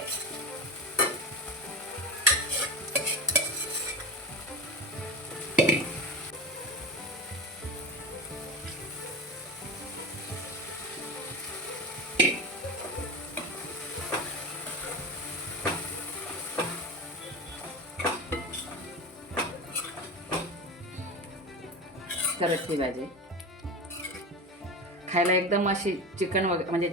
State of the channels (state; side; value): normal; both; correlation 0.25